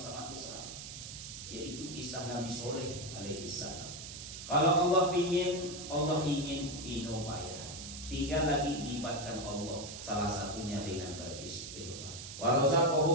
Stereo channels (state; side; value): noise; right; hiss, 10 dB below the sound